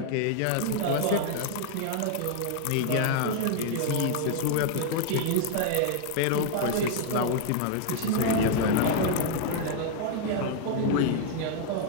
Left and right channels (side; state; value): both; different; correlation 0.00